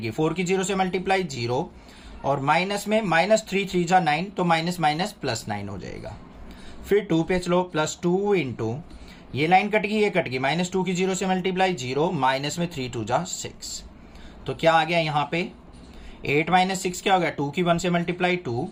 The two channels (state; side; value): identical; both; correlation 1.00